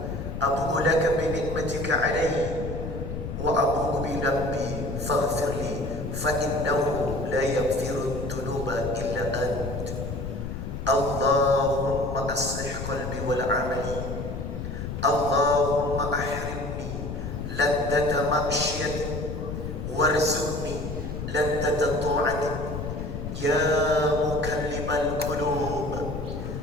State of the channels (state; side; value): noise; left; rumble, 6 dB below the sound